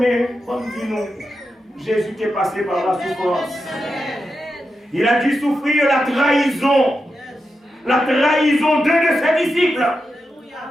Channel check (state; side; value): normal; both; correlation 0.88